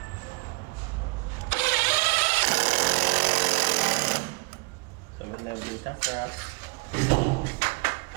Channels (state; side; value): quieter; left; 28.7 dB